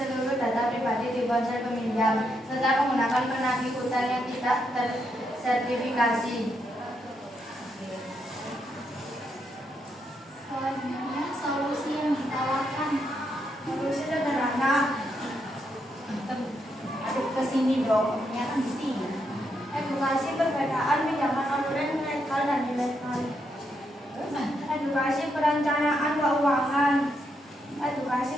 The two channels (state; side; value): normal; both; correlation 0.79